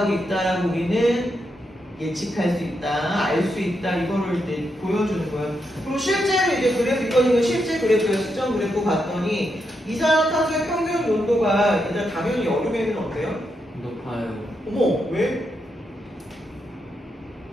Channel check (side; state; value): both; normal; correlation 0.83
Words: 있다라고 우리는 예측할 수 있다, 알 수 있다, 이거를 이제 보여주는 거예요. 그리고 실제로 이제 그래프, 이거는 실제 그래프예요. 시점 그래프 봤더니 이산화탄소의 평균 온도가 얘들아 당연히 여름에는 어때요? 높아요. 어머, 왜?